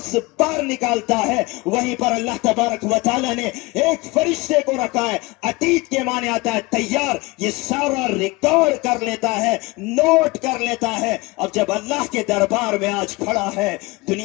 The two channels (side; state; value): right; quieter; 23.4 dB